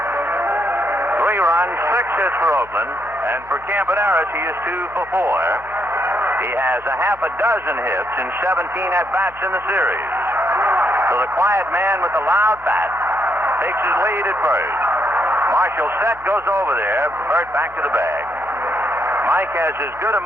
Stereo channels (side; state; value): left; noise; hum, 24 dB below the sound